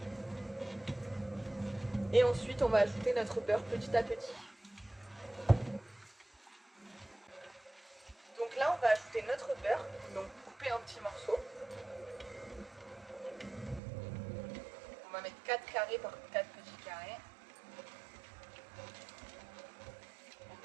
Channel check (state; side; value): drops out; left; at 13.8 s